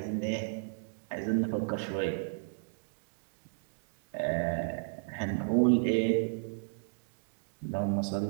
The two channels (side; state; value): left; silent; digital silence